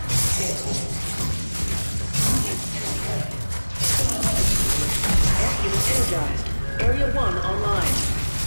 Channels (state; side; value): inverted; both; correlation -1.00